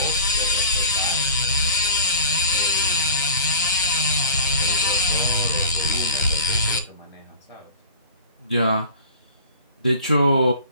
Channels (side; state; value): both; inverted; correlation -0.40